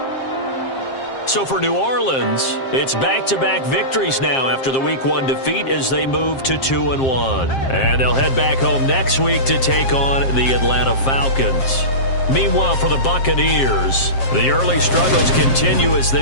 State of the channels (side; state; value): right; late; 7.5 ms